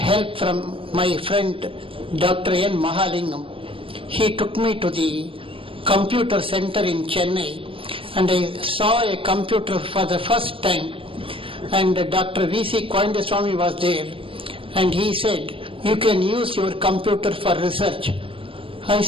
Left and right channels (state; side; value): late; left; 0.26 ms